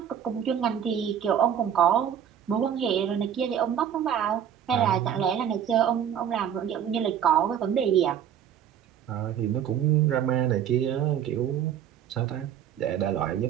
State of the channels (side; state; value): left; quieter; 9.3 dB